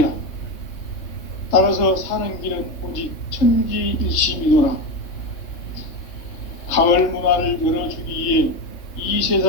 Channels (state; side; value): late; right; 3.3 ms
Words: 따라서 사는 길은 오직 천지일심이노라. 가을 문화를 열어주기 위해 이